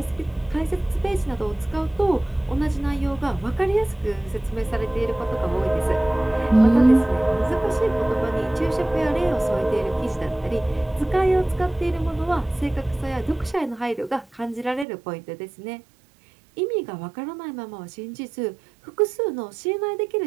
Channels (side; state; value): left; drops out; at 14.9 s